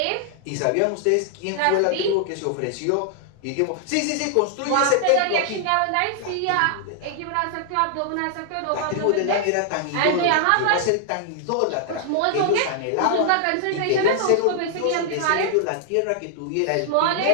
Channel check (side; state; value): both; different; correlation 0.00